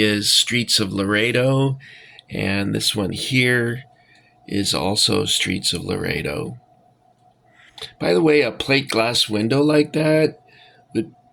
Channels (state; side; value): identical; both; correlation 1.00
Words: Streets of Laredo, and this one here is also Streets of Laredo. By the way, a plate glass window like that would